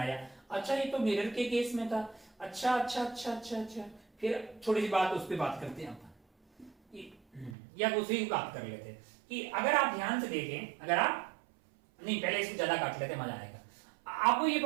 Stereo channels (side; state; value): left; drops out; at 7.6 s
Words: अच्छा ये तो मिरर के केस में था। अच्छा। फिर छोटी सी बात उस पर बात करते हैं या दूसरी बात कर लेते हैं कि अगर आप ध्यान से देखें, अगर आप नहीं, पहले इसको ज्यादा काट लेते, मजा आएगा। आपको ये